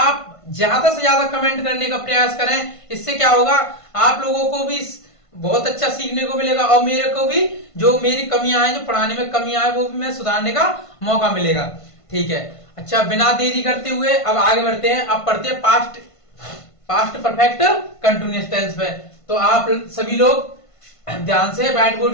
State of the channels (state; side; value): late; right; 1.5 ms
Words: ज्यादा से ज्यादा कमेंट करने का प्रयास करें। इससे क्या होगा, आप लोगों को भी बहुत अच्छा सीखने को मिलेगा और मेरे को भी जो मेरी कमियां हैं, जो पढ़ाने में कमियां हैं, वो भी मैं सुधारने का मौका मिलेगा। ठीक है, अच्छा बिना देरी करते हुए अब आगे बढ़ते हैं। अब पढ़ते हैं पास्ट परफेक्ट कंटिन्यूअस टेंस पे। तो आप सभी लोग ध्यान से व्हाइट